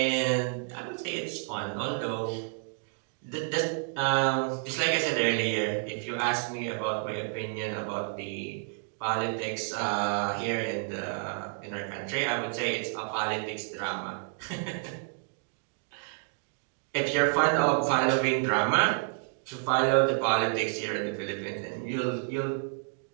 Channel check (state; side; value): silent; left; 58 dB below the other